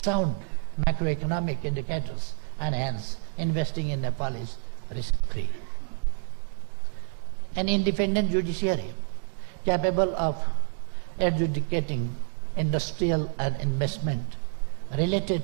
macroeconomic indicators, and hence investing in Nepal is risk-free. An independent judiciary capable of adjudicating industrial and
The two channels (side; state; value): left; silent; digital silence